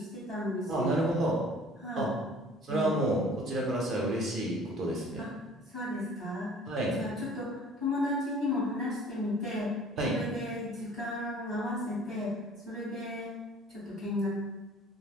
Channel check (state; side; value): normal; both; correlation 0.50